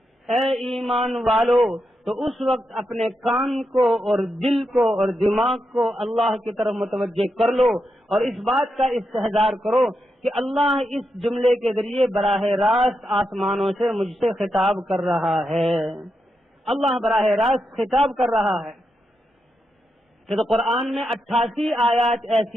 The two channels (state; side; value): normal; both; correlation 0.85